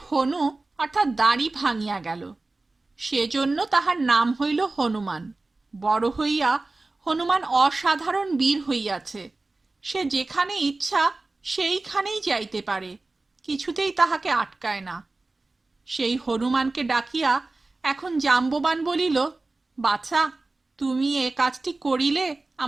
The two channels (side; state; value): left; quieter; 3.2 dB